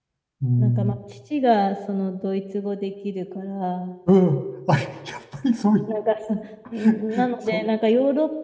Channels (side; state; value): both; identical; correlation 1.00